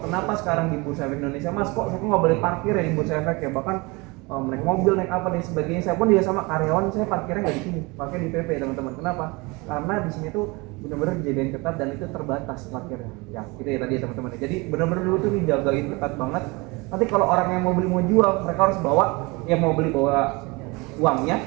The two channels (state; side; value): quieter; left; 25.8 dB